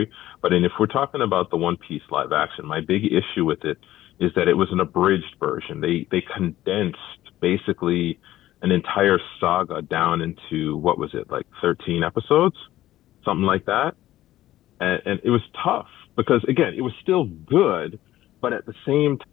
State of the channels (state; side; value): quieter; right; 14.5 dB